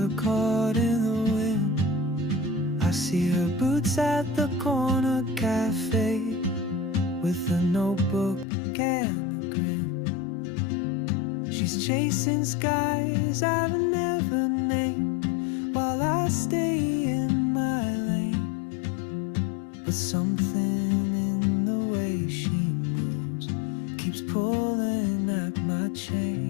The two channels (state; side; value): drops out; right; at 8.5 s